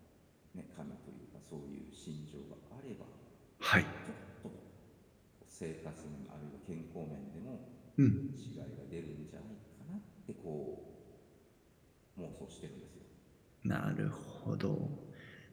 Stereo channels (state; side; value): identical; both; correlation 1.00